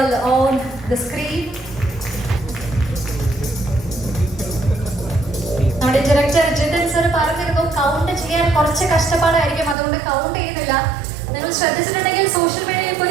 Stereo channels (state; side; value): drops out; left; at 9.8 s